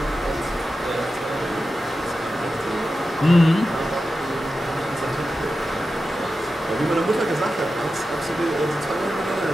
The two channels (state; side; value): normal; both; correlation 0.92